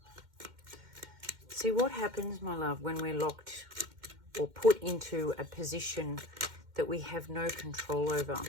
See what happens, my love, when we're locked or put into a position that we have no control over,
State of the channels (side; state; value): left; late; 2.1 ms